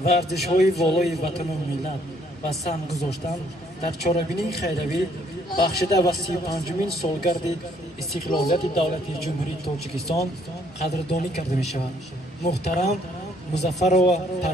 و ارزش‌های والای وطن و ملت و سهم گذاشتن در چاره‌بینی خیروی بخشیده و 35مین سالگرد استقلالیت دولت جمهوری تاجیکستان قدردانی کرده می شود. محترم مظفر و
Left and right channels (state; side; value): normal; both; correlation 0.66